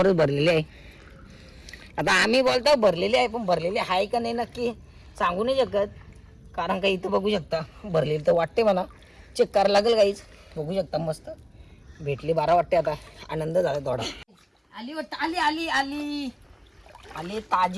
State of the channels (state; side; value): identical; both; correlation 1.00